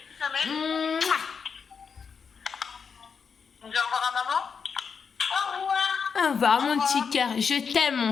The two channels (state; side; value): quieter; right; 6.1 dB